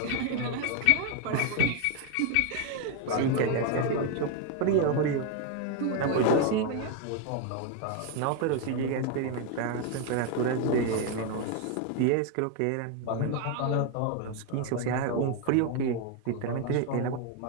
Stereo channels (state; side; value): different; both; correlation 0.01